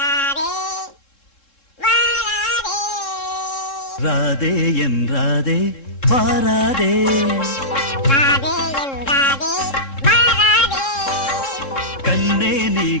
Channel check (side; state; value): right; late; 3.7 ms